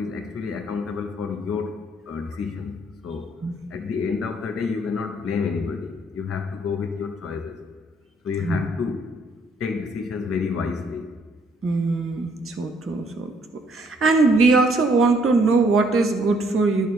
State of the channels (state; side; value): normal; both; correlation 0.66